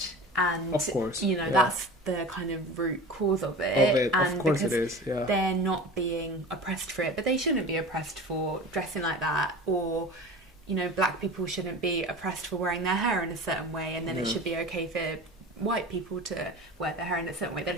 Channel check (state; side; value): normal; both; correlation 0.35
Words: and of course, you know, that's the kind of root cause of it. And of course it is, they're not being oppressed for it, but they shouldn't be oppressed for dressing like that, or you know, black people shouldn't be oppressed for wearing their hair in a certain way, and then it should be okay for white people to wear their hair in a certain way. That